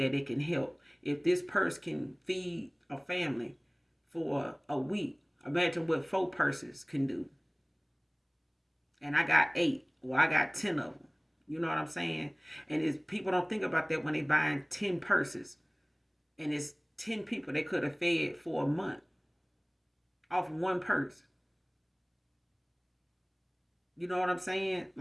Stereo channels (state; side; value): identical; both; correlation 1.00